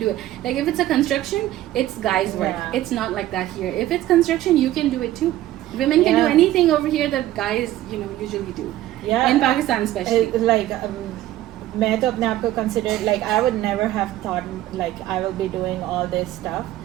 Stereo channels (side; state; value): left; quieter; 14.4 dB